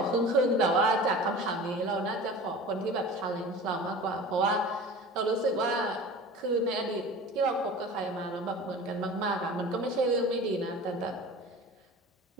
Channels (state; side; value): normal; both; correlation 0.37